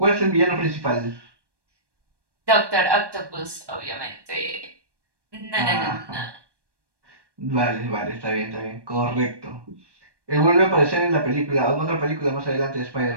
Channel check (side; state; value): left; late; 1.2 ms